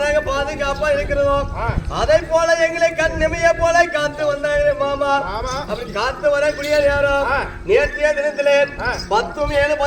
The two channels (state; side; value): identical; both; correlation 1.00